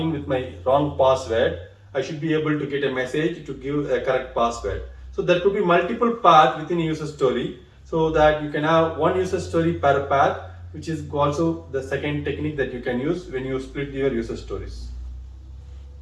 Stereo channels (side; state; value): both; identical; correlation 1.00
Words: with my wrong password, I should be able to get a message to give a correct password. So there could be multiple paths within a user story, so that you can have one user story per path, which is also the second technique that you can use when you split your user stories.